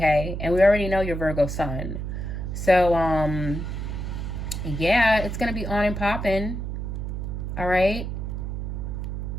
And we already know your Virgo sun. So, yeah, it's going to be on and popping. All right?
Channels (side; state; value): right; noise; hum, 4 dB below the sound